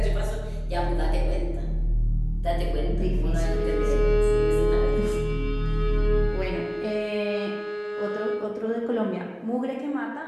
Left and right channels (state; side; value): identical; both; correlation 1.00